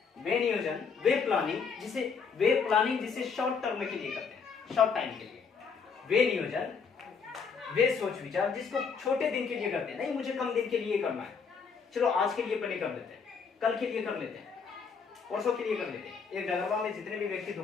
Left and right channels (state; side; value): quieter; right; 5.7 dB